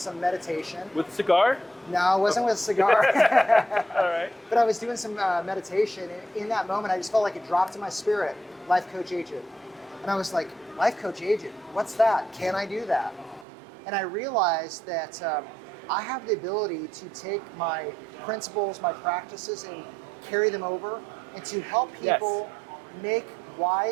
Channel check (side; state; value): left; drops out; at 13.5 s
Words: meditation. With a cigar? No, it wasn't with a cigar. All right. But I was doing some meditation, and in that moment, I just felt like it dropped in my spirit, Life Coach Agent. And I was like, Life Coach Agent, what's that? Can I do that? And I realized that I have the ability to take my principles, my practices, and carry them over, and to help people make